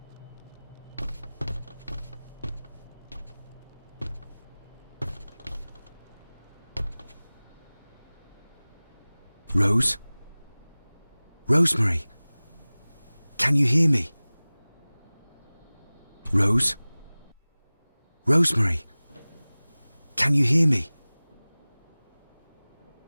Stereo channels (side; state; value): both; inverted; correlation -1.00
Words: Rose? Rosemary? Can you hear me? Rose? Rosemary? Can you hear me?